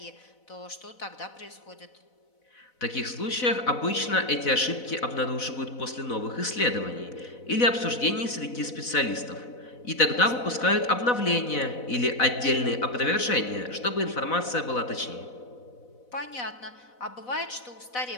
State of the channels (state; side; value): late; right; 4.0 ms